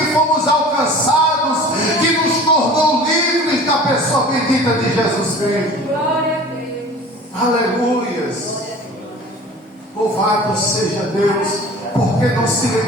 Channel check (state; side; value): normal; both; correlation 0.42